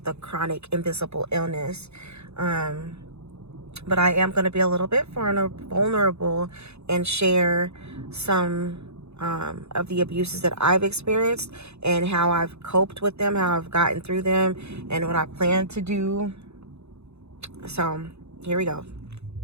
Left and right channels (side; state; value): left; late; 0.80 ms